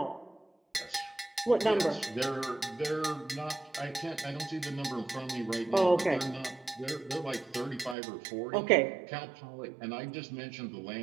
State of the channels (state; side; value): drops out; left; at 8.0 s